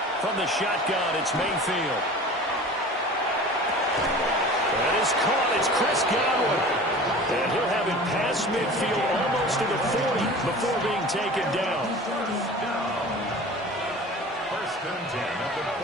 From the shotgun, it's Mayfield. That is caught. It's Chris Godwin. And he'll have it past midfield almost to the 40 before being taken down. First and 10 at the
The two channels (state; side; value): normal; both; correlation 0.39